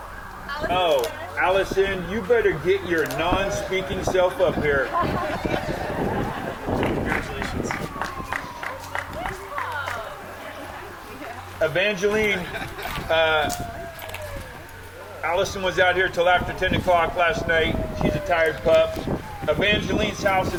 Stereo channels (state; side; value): identical; both; correlation 1.00